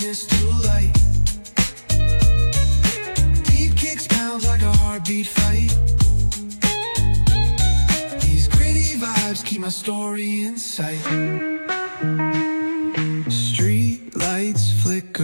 to light. Beat kicks pounds like a heartbeat fight. These gritty vibes keep my story in sight. Street lights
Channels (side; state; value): both; inverted; correlation -1.00